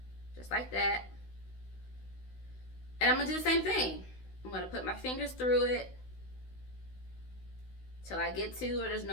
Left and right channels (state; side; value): late; right; 16 ms